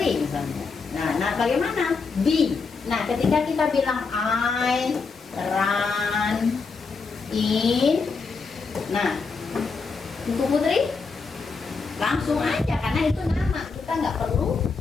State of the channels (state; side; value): quieter; right; 4.7 dB